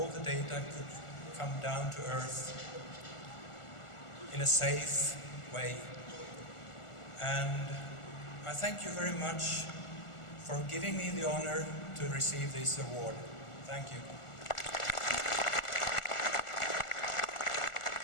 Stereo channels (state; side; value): late; right; 1.4 ms